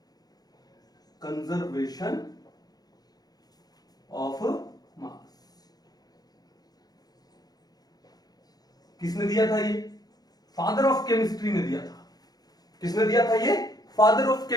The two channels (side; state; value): right; late; 0.19 ms